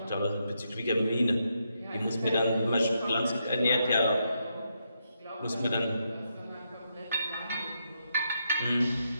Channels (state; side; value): inverted; both; correlation -0.81